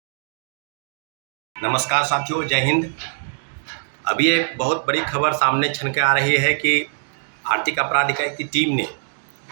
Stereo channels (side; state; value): left; silent; digital silence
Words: नमस्कार साथियों, जय हिंद। अभी एक बहुत बड़ी खबर सामने छन के आ रही है कि आर्थिक अपराध इकाई की टीम ने